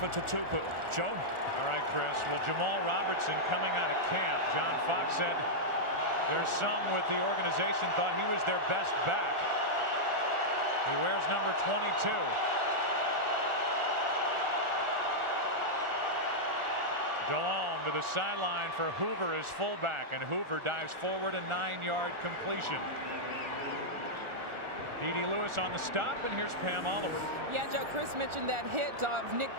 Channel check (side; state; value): left; late; 1.4 ms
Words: Tatupu. Joe? All right, Chris. Well, Jamal Robertson coming out of camp. John Fox said there's some with the organization thought he was their best back. He wears number 22. Delhomme to the sideline for Hoover as fullback, and Hoover dives forward, a 9-yard completion. D.D. Lewis on the stop, and here's Pam Oliver. Yeah, Joe, Chris mentioned that hit of Nick